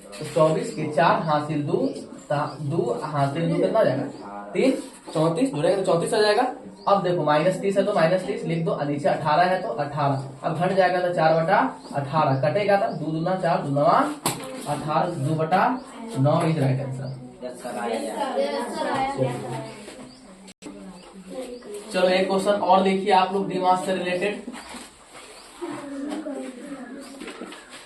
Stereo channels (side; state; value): both; identical; correlation 1.00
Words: तो 24 के 4 हासिल 2 हासिल 2 कितना जाएगा? 3 34 जुड़ेगा तो 34 आ जाएगा। अब देखो -30 है तो -30 लिख दो, नीचे 18 है तो 18। अब घट जाएगा तो 4/18 कटेगा तो 2 दूना 4 2 9 18 2/9 इज राइट आंसर। चलो एक क्वेश्चन और देखिए आप लोग दिमाग से रिलेटेड।